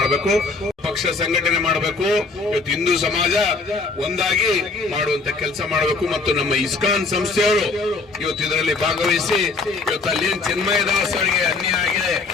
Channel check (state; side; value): quieter; right; 4.0 dB